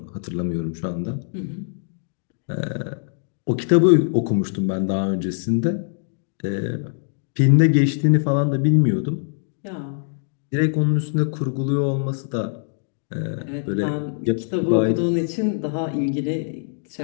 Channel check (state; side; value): silent; right; digital silence